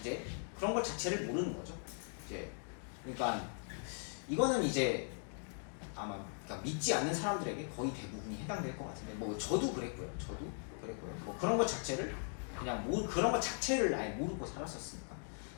그런 것 자체를 모르는 거죠. 그러니까 이거는 이제 아마 그러니까 믿지 않는 사람들에게 거의 대부분이 해당될 것 같은데, 뭐 저도 그랬고요. 뭐 그런 것 자체를 그런 것 자체를 아예 모르고 살았었으니까.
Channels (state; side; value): silent; right; 51 dB below the other